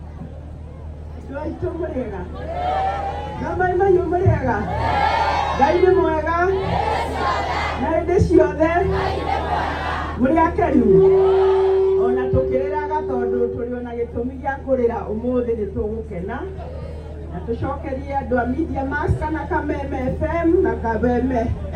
Ona tukiriraga tondu turiona gitumi gia kurira umuthi ni tugukena na tucokerie andu a Media Max kana Kameme FM na Kameme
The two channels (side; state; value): both; identical; correlation 1.00